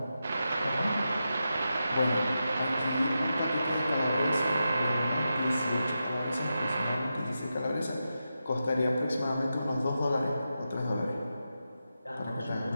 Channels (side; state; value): both; inverted; correlation -0.89